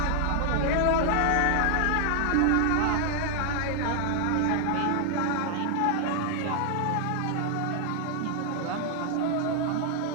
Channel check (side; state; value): both; different; correlation 0.00